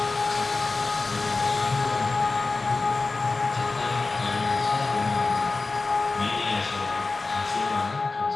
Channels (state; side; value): quieter; right; 3.7 dB